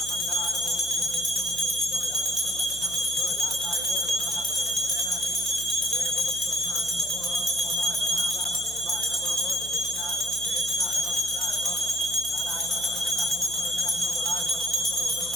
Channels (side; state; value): right; noise; hum, 17 dB below the sound